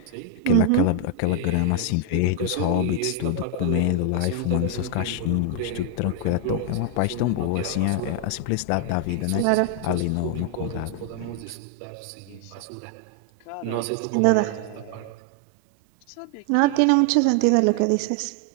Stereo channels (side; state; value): both; different; correlation 0.00